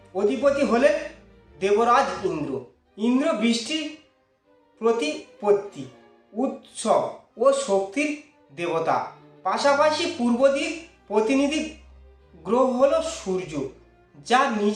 অধিপতি হলেন দেবরাজ ইন্দ্র। ইন্দ্র বৃষ্টির প্রতিপত্তি, উৎসব ও শক্তির দেবতা। পাশাপাশি পূর্ব দিক প্রতিনিধি গ্রহ হলো সূর্য, যা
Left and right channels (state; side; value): identical; both; correlation 1.00